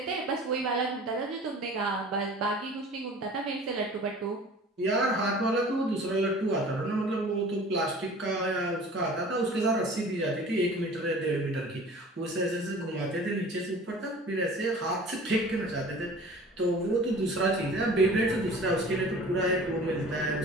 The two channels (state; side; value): normal; both; correlation 0.44